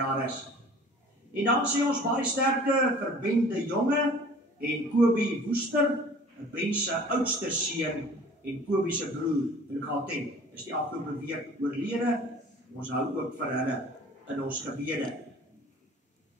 is. En dan sê ons baie sterkte vir Ben de Jonge en Kobie Woester, Ben se oudste seun en Kobie se broer in Gauteng. Is die afgelope week oorlede. Ons hou ook vir hulle in ons gebede.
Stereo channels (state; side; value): normal; both; correlation 0.47